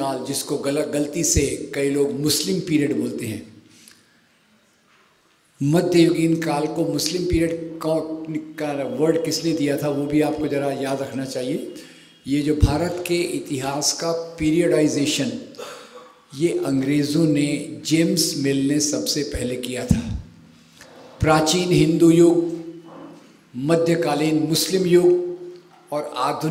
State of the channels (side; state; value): both; identical; correlation 1.00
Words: जिसको गलती से कई लोग मुस्लिम पीरियड बोलते हैं, मध्ययुगीन काल को मुस्लिम पीरियड का वर्ड किसने दिया था वो भी आपको ज़रा याद रखना चाहिए। ये जो भारत के इतिहास का पीरियडाइजेशन ये अंग्रेज़ों ने, जेम्स मिल ने सबसे पहले किया था। प्राचीन हिंदू युग, मध्यकालीन मुस्लिम युग और